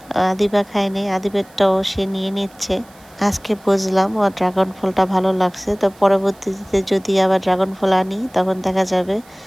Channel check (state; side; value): noise; right; hiss, 27 dB below the sound